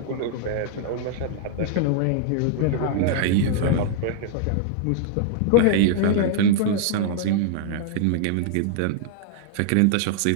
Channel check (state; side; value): different; both; correlation -0.01